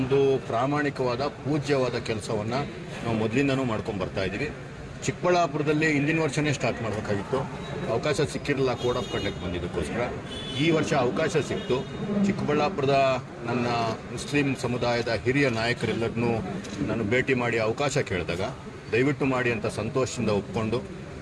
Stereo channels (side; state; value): both; identical; correlation 1.00